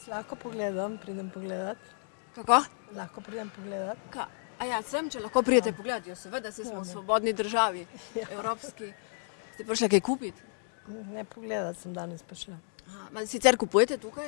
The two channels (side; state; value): right; silent; digital silence